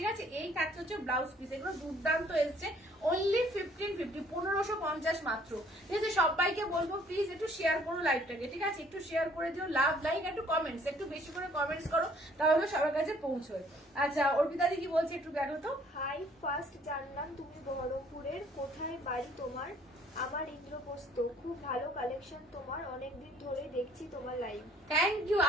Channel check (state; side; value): normal; both; correlation 0.60